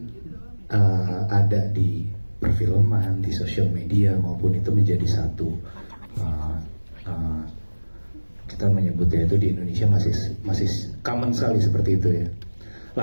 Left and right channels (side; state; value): both; inverted; correlation -1.00